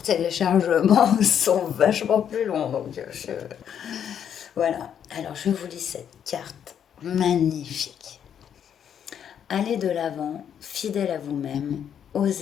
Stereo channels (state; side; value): quieter; right; 8.7 dB